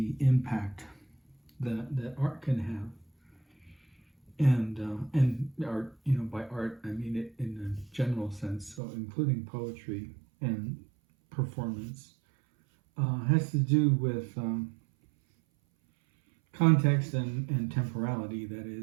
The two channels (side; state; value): left; drops out; at 8.8 s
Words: impact that art can have, and art, by art I mean it in a general sense, so including poetry and performance, has to do with context and temporality. That